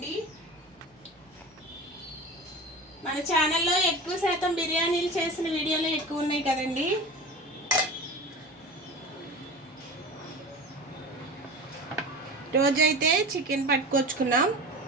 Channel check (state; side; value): normal; both; correlation 0.32